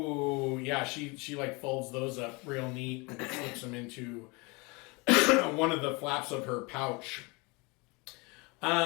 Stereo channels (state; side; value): quieter; right; 27.6 dB